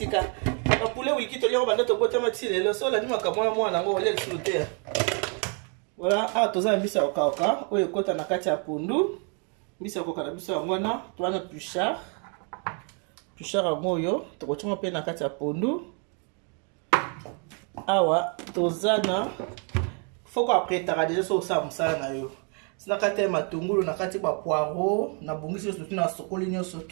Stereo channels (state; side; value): quieter; left; 38.3 dB